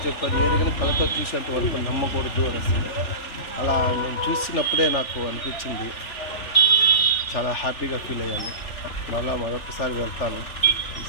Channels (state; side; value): late; right; 3.4 ms